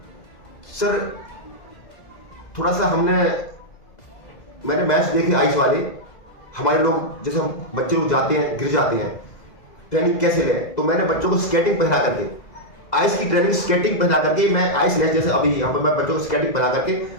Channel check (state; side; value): late; right; 2.0 ms